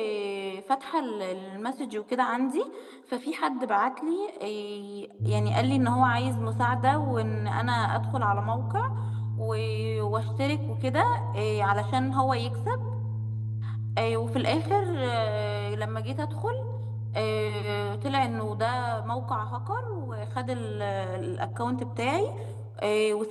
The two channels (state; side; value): identical; both; correlation 1.00